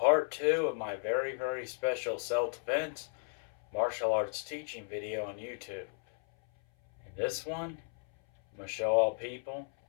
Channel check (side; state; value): right; silent; 55 dB below the other